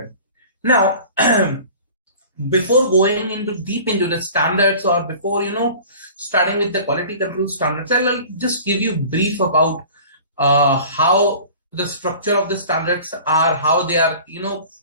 Now, before going into deep into the standards or before, starting with the quality control standards, I'll just give you brief about how the structure of the standards are, how they are,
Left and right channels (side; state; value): both; inverted; correlation -0.44